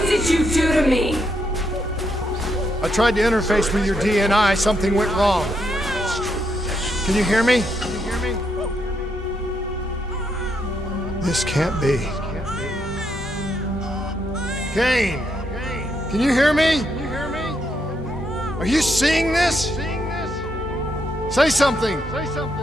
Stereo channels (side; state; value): both; normal; correlation 0.78